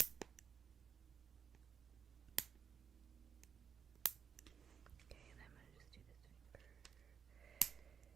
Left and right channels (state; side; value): quieter; left; 6.9 dB